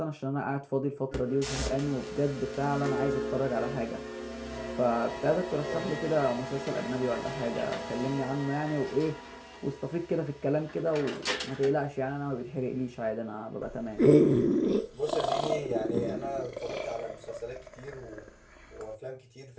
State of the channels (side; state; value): both; identical; correlation 1.00